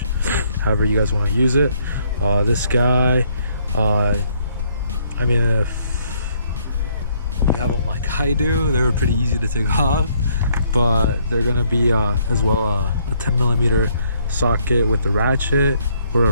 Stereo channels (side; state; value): both; inverted; correlation -0.68